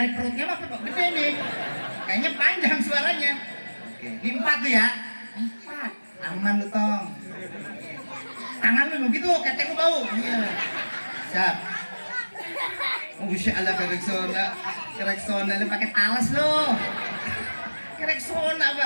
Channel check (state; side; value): inverted; both; correlation -1.00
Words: perutnya mah gede nih. Kayaknya panjang suaranya. Oke. Ini 4 tuh ya. 4. Aman lu tong. Tangan lu begitu. Ketek lu bau. Iya. Siap. Oh, Masya Allah kereksona lu pakai talas lu. Kerek sona,